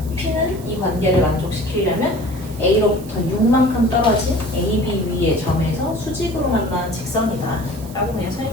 P는 이 관계를 만족시키려면 A로부터 6만큼 떨어진 AB 위의 점에서 수직으로 만나는 직선이다 라고 그냥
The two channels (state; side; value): noise; right; hiss, 19 dB below the sound